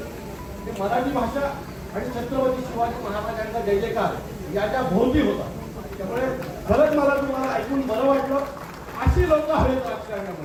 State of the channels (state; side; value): identical; both; correlation 1.00